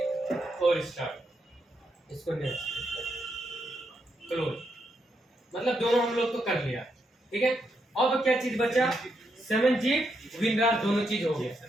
और स्टार्ट, इसको नेक्स्ट क्लोज, मतलब दोनों हम लोग तो कर लिया, ठीक है। अब क्या चीज बचा, 7G विनरार दोनों चीज हो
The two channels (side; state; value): both; normal; correlation 0.81